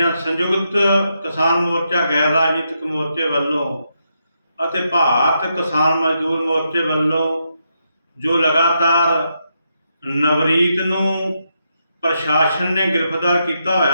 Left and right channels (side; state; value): both; inverted; correlation -0.82